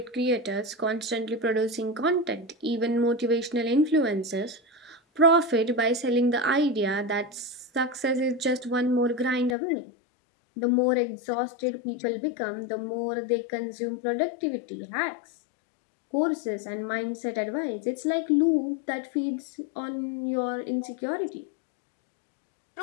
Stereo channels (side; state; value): right; drops out; at 9.6 s